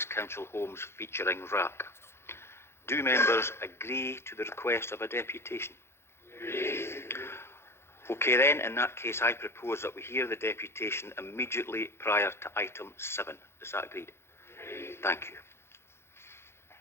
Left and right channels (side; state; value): right; late; 0.12 ms